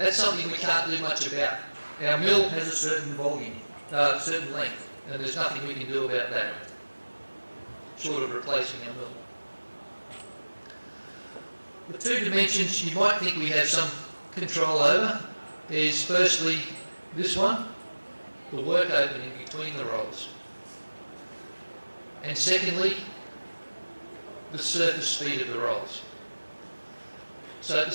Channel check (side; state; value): both; inverted; correlation -1.00